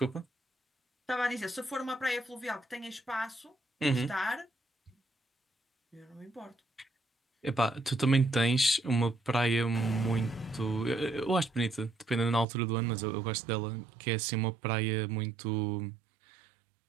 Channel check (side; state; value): left; drops out; at 12.5 s